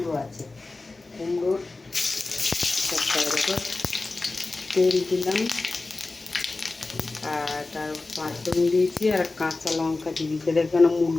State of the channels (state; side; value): quieter; right; 3.4 dB